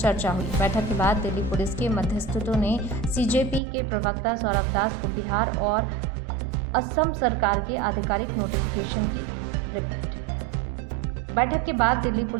हुई। बैठक के बाद दिल्ली पुलिस के मध्यस्थों ने सीजेपी के प्रवक्ता सौरभ दास को बिहार और असम सरकार के आधिकारिक नोटिफिकेशन की रिपोर्ट। बैठक के बाद दिल्ली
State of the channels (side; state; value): left; drops out; at 3.6 s